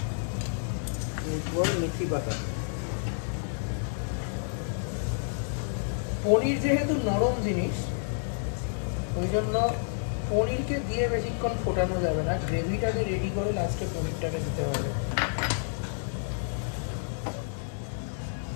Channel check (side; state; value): right; silent; digital silence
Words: এরপর মেথি পাতা। পনির যেহেতু নরম জিনিস, ওই জন্য পনিরকে দিয়ে বেশিক্ষণ ফোটানো যাবে না, গ্রেভিটাকে রেডি করে লাস্টে পনিরটাকে দিতে হবে।